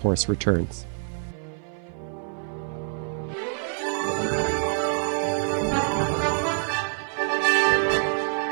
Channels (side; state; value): left; silent; 56 dB below the other